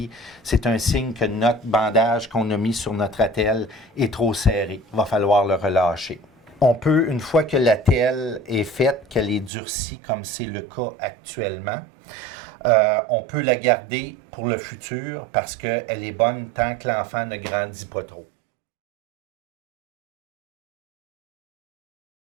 c'est un signe que notre bandage qu'on a mis sur notre attelle est trop serré. Il va falloir le relâcher. On peut, une fois que l'attelle est faite, qu'elle est durcie, comme c'est le cas actuellement, on peut la garder pour le futur parce qu'elle est bonne tant que l'enfant ne grandit pas trop.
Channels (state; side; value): drops out; left; at 9.5 s